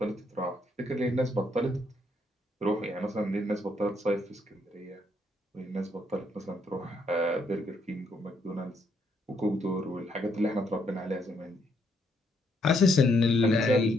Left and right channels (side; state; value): both; normal; correlation 0.73